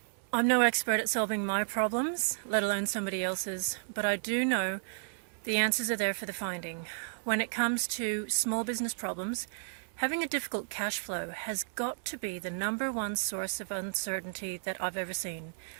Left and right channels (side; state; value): left; silent; 56 dB below the other